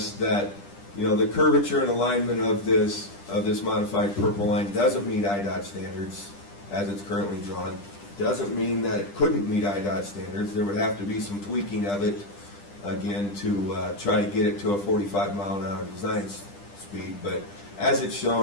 that the curvature and alignment of this modified purple line doesn't meet IDOT standards as it's currently drawn. Doesn't mean that it couldn't meet IDOT standards. There would have to be some tweaking of it, again, to try to get it to a 45-mile-an-hour design speed. But as it's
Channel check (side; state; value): right; late; 10 ms